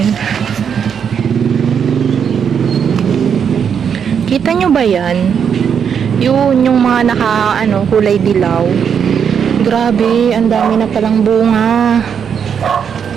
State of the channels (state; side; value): quieter; left; 7.4 dB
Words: Kita nyo ba yan? Yun, yung mga kulay dilaw. Grabe, ang dami na palang bunga.